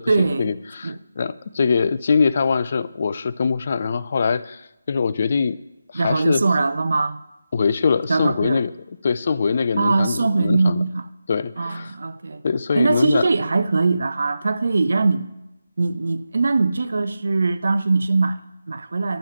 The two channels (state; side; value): inverted; both; correlation -0.88